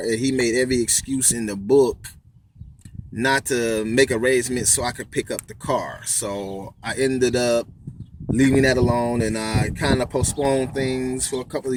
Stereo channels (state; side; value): identical; both; correlation 1.00